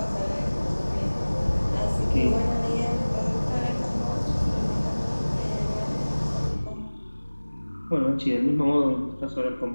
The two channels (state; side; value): inverted; both; correlation -1.00